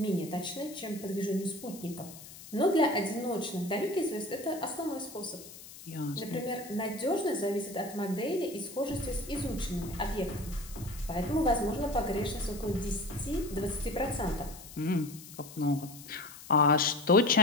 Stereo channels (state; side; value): noise; left; hiss, 16 dB below the sound